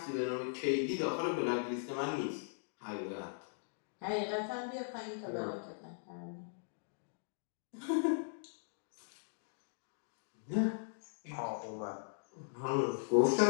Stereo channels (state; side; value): silent; right; digital silence